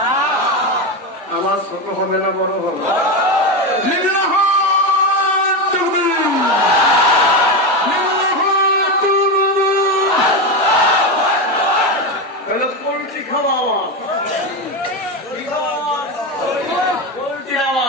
আমার ছোট হবে না বড় হবে? পোল্ট্রি খাওয়া আওয়াজ, পোল্ট্রির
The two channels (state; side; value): normal; both; correlation 0.15